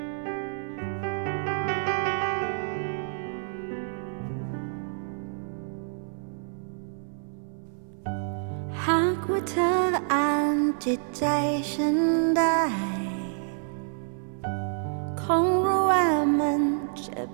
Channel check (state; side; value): silent; left; 59 dB below the other